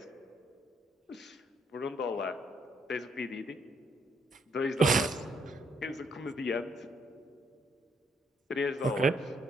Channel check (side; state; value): both; normal; correlation 0.71